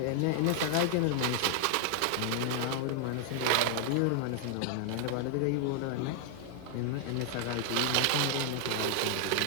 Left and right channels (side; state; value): both; different; correlation 0.00